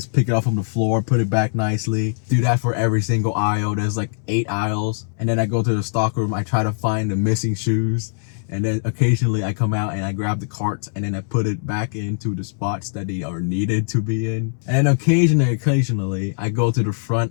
pick it up from the floor, put it back nicely. Do that for every single aisle. There's like 8 aisles. And then I go to the stock room. I try to find the missing shoes. And then occasionally I come out and I grab the carts and then I put it back into the spots that they are needed to be in. And then occasionally I go to the front.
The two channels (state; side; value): silent; right; digital silence